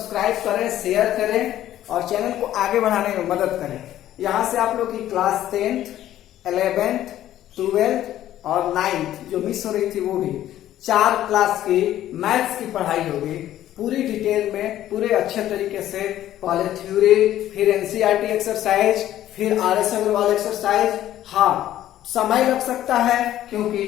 करें, शेयर करें और चैनल को आगे बढ़ाने में मदद करें। यहाँ से आप लोग की क्लास 10th, 11th, 12th और 9th जो मिस हो रही थी वो भी 4 क्लास की मैथ्स की पढ़ाई होगी पूरी डिटेल में, पूरे अच्छे तरीके से। पहले थ्योरी, फिर एनसीईआरटी एक्सरसाइज, फिर आरएस अग्रवाल एक्सरसाइज। हाँ, समय लग सकता है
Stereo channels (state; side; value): quieter; right; 12.8 dB